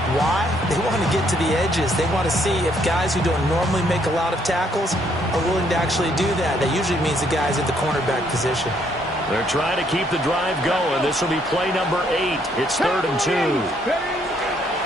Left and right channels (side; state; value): both; normal; correlation 0.69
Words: Why? They want to get to the edges. They want to see if guys who don't normally make a lot of tackles are willing to actually do that. That usually means the guys at the cornerback position. They're trying to keep the drive going. This will be play number 8. It's 3rd and 2.